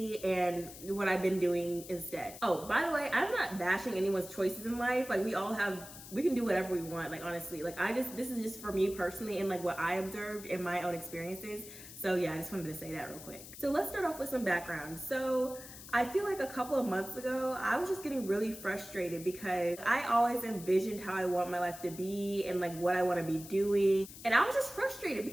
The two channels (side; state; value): left; noise; hiss, 15 dB below the sound